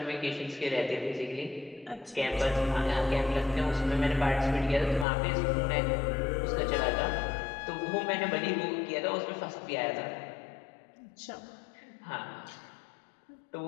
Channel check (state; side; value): drops out; right; at 5.1 s